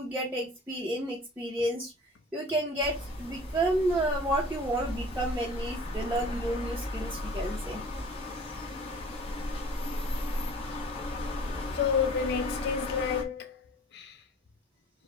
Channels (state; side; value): normal; both; correlation 0.46